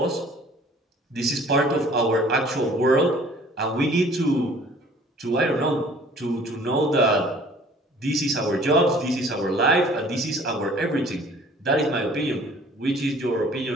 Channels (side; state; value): both; normal; correlation 0.52